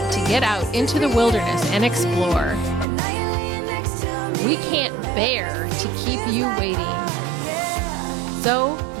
to get out into the wilderness and explore. We can't bear to keep you waiting. So,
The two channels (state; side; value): drops out; left; at 2.9 s